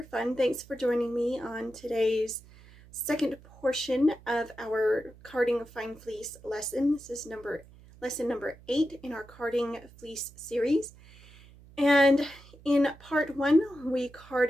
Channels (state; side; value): noise; right; hum, 23 dB below the sound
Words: Fun. Thanks for joining me on today's second portion of our carding fine fleece lesson. This is lesson number 8 in our carding fleece series. And in part 1, we